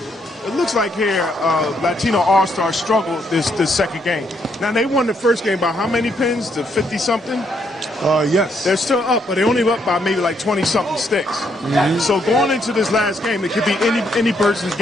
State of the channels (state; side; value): normal; both; correlation 0.74